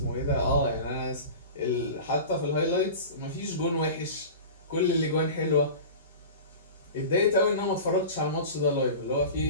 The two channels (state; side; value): inverted; both; correlation -0.34